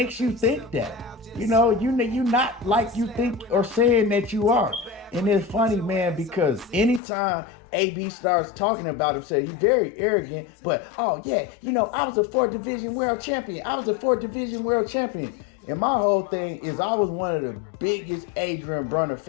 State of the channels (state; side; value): drops out; right; at 7.0 s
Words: you think that? You not like you think or saying that you are." And it's funny, man, because anytime AB starts talking about himself, he's very arrogant, but, oh yeah, I was a 4th division world champion. And my whole thing is I was one of the biggest Adrien Broner